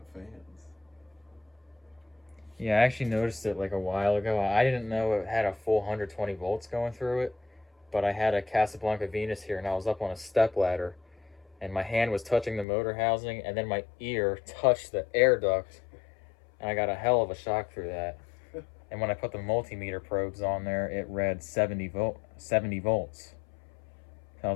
fans. Yeah, I actually noticed it like a while ago. I didn't know it had a full 120 volts going through it, but I had a Casablanca Venus here and I was up on a step ladder and my hand was touching the motor housing and then my ear touched the air duct and I got a hell of a shock through that. And when I put the multimeter probes on there, it read 70 volts. So I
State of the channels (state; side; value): drops out; right; at 12.7 s